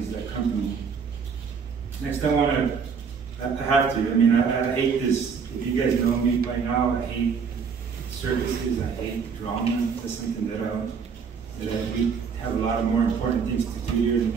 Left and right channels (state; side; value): quieter; left; 6.1 dB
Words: that company. Next, I have to, I mean, I hate this. If you guys know me by now, I hate circuses, I hate drama. That's something that we have a lot of more important things to do here in